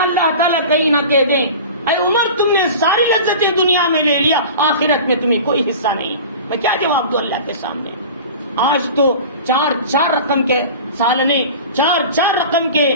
تعالیٰ کہیں نہ کہہ دیں اے عمر تم نے ساری لذتیں دنیا میں لے لیا، آخرت میں تمہیں کوئی حصہ نہیں۔ میں کیا جواب دوں اللہ کے سامنے؟ آج تو 4 رقم کے سالنے، 4 رقم کے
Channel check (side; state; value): both; inverted; correlation -0.36